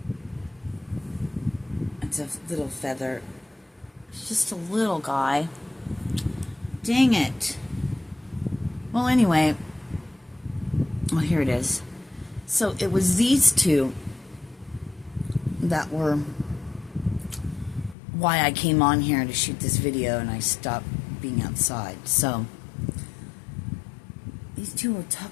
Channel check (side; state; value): right; drops out; at 17.9 s